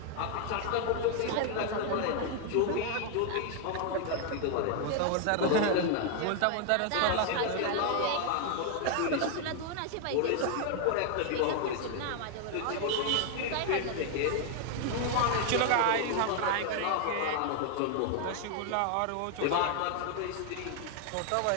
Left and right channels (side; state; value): both; different; correlation 0.00